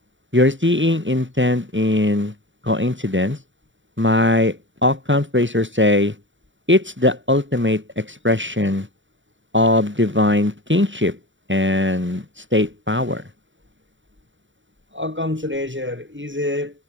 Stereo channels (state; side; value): late; left; 0.55 ms